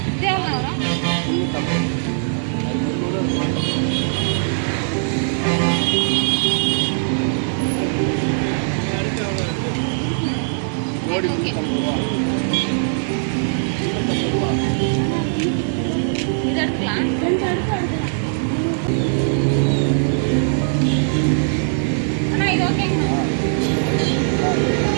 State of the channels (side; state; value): left; silent; digital silence